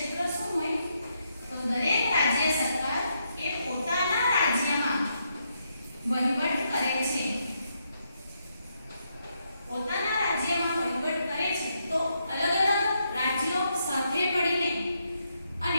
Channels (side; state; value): both; inverted; correlation -0.79